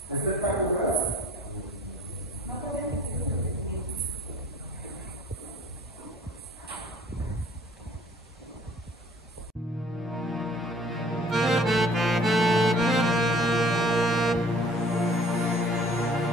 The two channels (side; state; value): both; normal; correlation 0.53